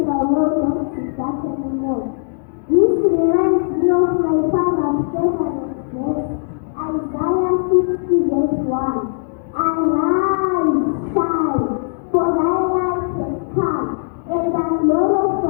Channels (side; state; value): right; silent; digital silence